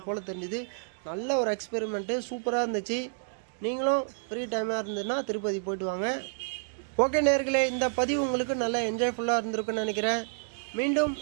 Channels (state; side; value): silent; left; digital silence